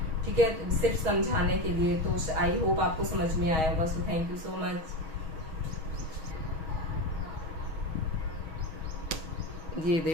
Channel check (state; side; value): late; left; 6.3 ms